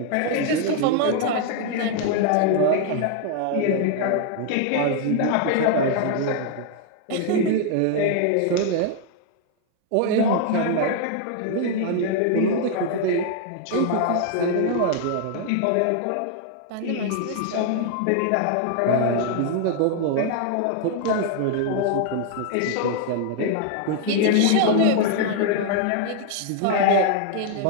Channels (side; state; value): both; different; correlation 0.00